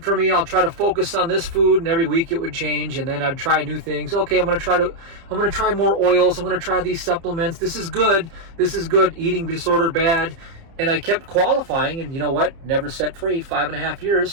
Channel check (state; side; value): late; left; 30 ms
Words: for me. I'll try to focus on this food, and every week it would change, and then I'd try new things. Okay, I'm going to try more oils. I'm going to try these supplements. This is good. This is good. Eating disorder bad. And I kept qualifying, and you know what? Never set free. 5.5